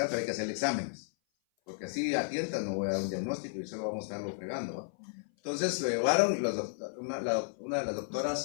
pero hay que hacer exámenes. Porque así a tientas no voy a dar un diagnóstico y solo vamos a estarlo fregando, ¿no? Entonces lo llevaron, una de las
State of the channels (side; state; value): right; silent; 56 dB below the other